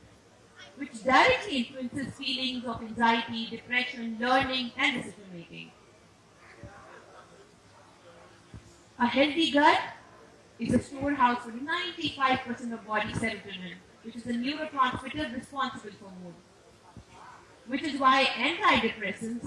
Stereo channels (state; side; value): identical; both; correlation 1.00